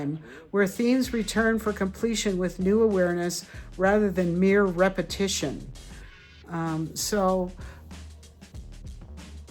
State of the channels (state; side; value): identical; both; correlation 1.00